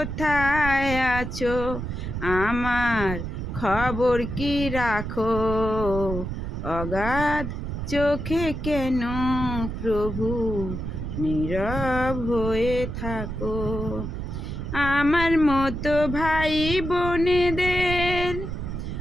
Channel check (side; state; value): right; noise; rumble, 5 dB below the sound